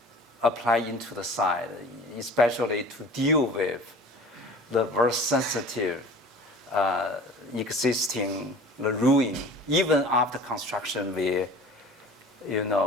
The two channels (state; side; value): normal; both; correlation 0.43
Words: into the side, especially to deal with the very sensitive existing the ruin. Even after construction, we